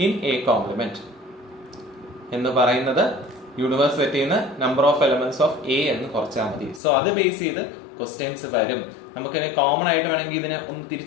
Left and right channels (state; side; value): drops out; right; at 6.8 s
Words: in a complement. എന്ന് പറയുന്നത് യൂണിവേഴ്സ് സെറ്റിൽ നിന്ന് number of elements of a എന്ന് കുറച്ചാൽ മതി. സോ അത് ബേസ് ചെയ്ത് ക്വസ്റ്റ്യൻസ് വരും. നമുക്ക് കോമൺ ആയിട്ട് വേണമെങ്കിൽ ഇതിനെ ഒന്ന്